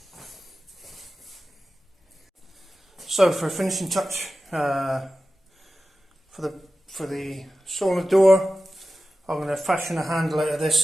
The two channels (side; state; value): both; normal; correlation 0.94